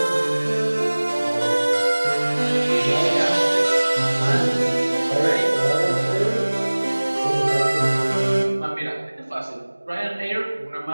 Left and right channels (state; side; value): inverted; both; correlation -1.00